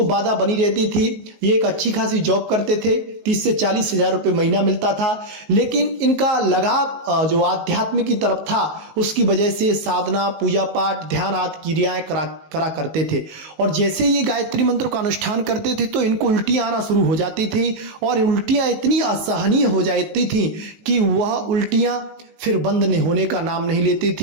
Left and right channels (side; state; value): left; late; 19 ms